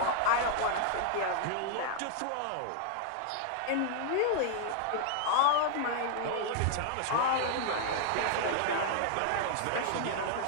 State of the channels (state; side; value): different; both; correlation 0.00